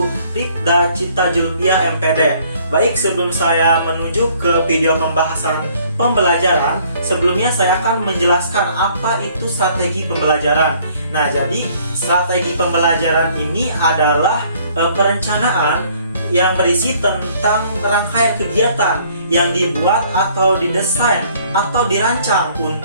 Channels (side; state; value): both; inverted; correlation -0.60